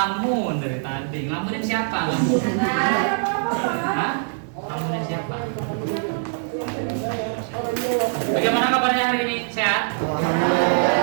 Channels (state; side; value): silent; left; digital silence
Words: dari tadi. Ngelamunin siapa? Hah? Ngelamunin siapa? Bagaimana kabarnya hari ini? Sehat?